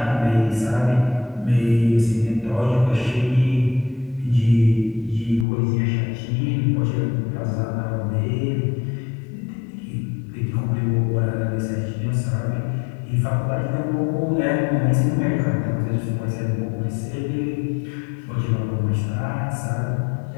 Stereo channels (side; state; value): right; drops out; at 5.5 s